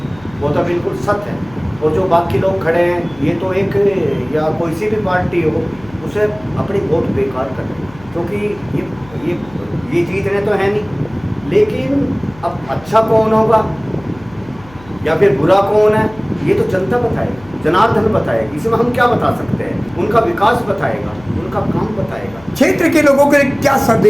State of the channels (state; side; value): noise; left; hum, 22 dB below the sound